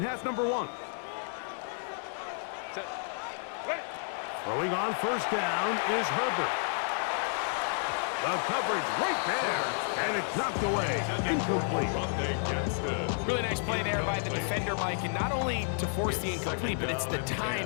half number 1. Throwing on first down is Herbert. The coverage right there, and it's knocked away. Incomplete. Really nice play there by the defender, Mike, and not only to force the incomplete, but it's the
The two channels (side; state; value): right; silent; 57 dB below the other